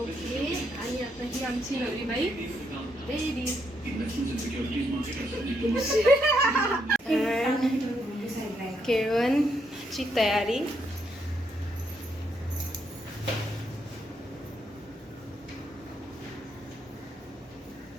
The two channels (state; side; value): normal; both; correlation 0.77